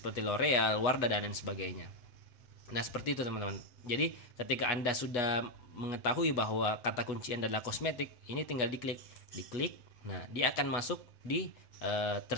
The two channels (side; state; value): right; late; 7.8 ms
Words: L'Oreal, Wardah dan lain sebagainya. Nah, seperti itu teman-teman. Jadi ketika Anda sudah mengetahui bahwa kata kunci Anda adalah kosmetik, ini tinggal diklik. Nah, dia akan masuk di